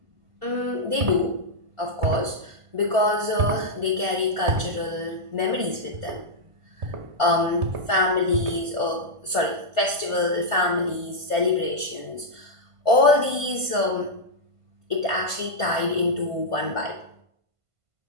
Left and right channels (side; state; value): left; late; 1.5 ms